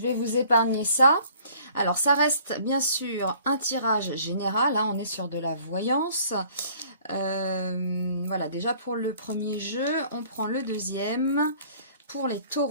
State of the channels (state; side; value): inverted; both; correlation -0.55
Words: vais vous épargner ça. Alors ça reste bien sûr un tirage général, hein, on est sur de la voyance. Voilà, déjà pour le premier jeu, on prend le deuxième pour les